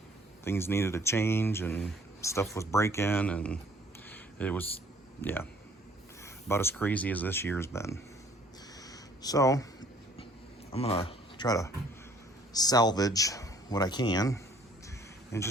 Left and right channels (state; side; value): normal; both; correlation 0.58